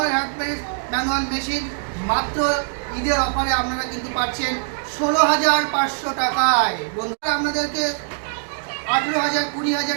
হ্যান্ড প্রেস ম্যানুয়াল মেশিন মাত্র ঈদের অফারে আপনারা কিন্তু পাচ্ছেন 16,500 টাকায়। বন্ধুরা, আপনাদেরকে 18,000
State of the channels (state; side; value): silent; left; digital silence